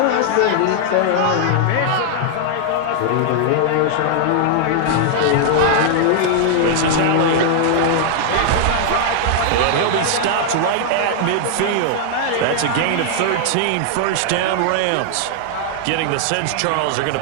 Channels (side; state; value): both; different; correlation 0.00